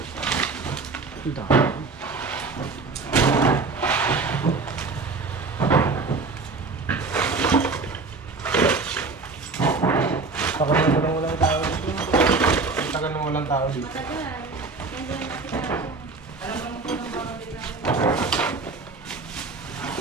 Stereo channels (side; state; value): left; quieter; 4.1 dB